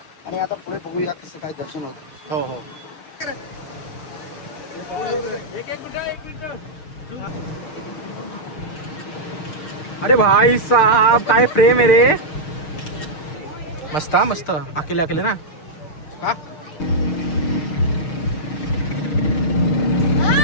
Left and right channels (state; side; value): late; right; 6.4 ms